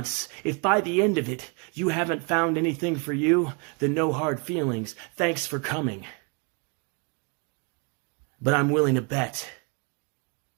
if by the end of it, you haven't found anything for you, then no hard feelings. Thanks for coming. But I'm willing to bet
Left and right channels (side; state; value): left; quieter; 33.9 dB